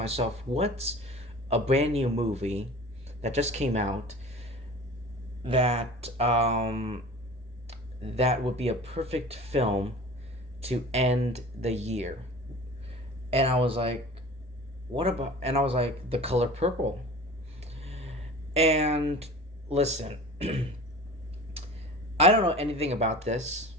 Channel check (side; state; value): both; normal; correlation 0.39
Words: what's a brand new movie that just came out that that would be a perfect film to end the year? And I was like, what about? And I was like, The Color Purple. And listen, I don't know anything about this,